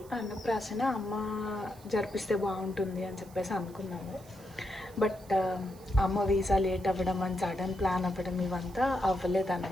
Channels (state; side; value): noise; right; hiss, 24 dB below the sound